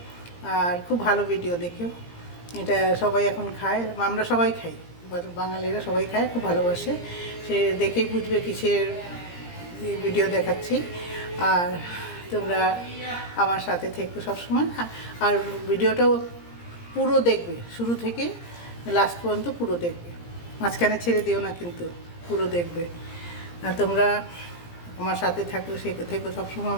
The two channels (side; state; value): right; late; 17 ms